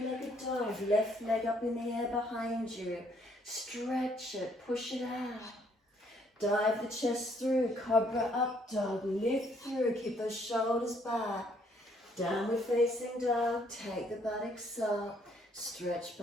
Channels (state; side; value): normal; both; correlation 0.66